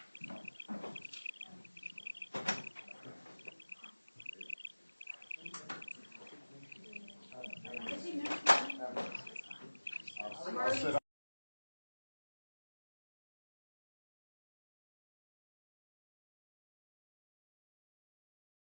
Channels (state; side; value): inverted; both; correlation -1.00